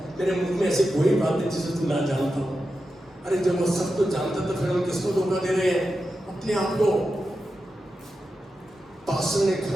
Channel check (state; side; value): normal; both; correlation 0.90